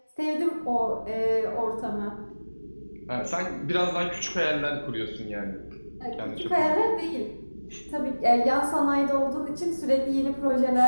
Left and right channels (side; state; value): both; inverted; correlation -1.00